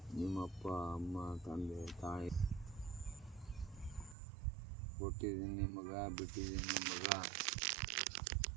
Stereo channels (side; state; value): left; drops out; at 4.2 s